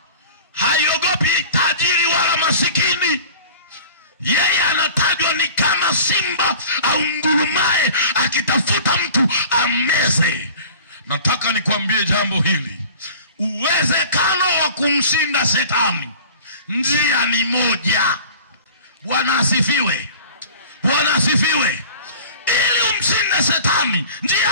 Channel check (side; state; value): both; inverted; correlation -0.42